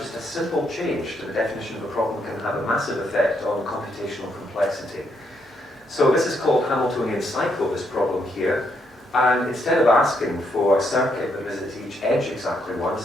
a simple change to the definition of a problem can have a massive effect on computational complexity. So this is called Hamiltonian cycle, this problem here. And instead of asking for a circuit that visits each edge exactly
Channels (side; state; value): both; normal; correlation 0.76